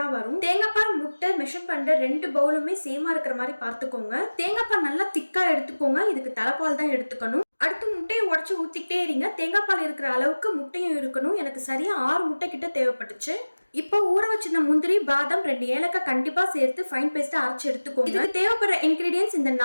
வரும். தேங்காய் பால் முட்டை மெஷர் பண்ற 2 பவுலுமே சேமா இருக்கிற மாதிரி பார்த்துக்கோங்க. தேங்காய் பால் நல்லா திக்கா எடுத்துக்கோங்க. இதுக்கு தலைப்பால் தான் எடுத்துக்கணும். அடுத்து முட்டையை உடச்சு ஊத்திக்கிட்டே இருங்க. தேங்காய் பால் இருக்கிற அளவுக்கு முட்டையும் இருக்கணும். எனக்கு சரியா 6 முட்டை கிட்ட தேவைப்பட்டுச்சு. இப்போ ஊற வச்சிருந்த முந்திரி பாதாம் 2 ஏலக்காய் கண்டிப்பா சேர்த்து ஃபைன் பேஸ்டா அரைச்சு எடுத்துக்கோங்க. இதுக்கு தேவைப்படுற இன்கிரீடியன்ஸ் இந்த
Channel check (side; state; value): both; inverted; correlation -1.00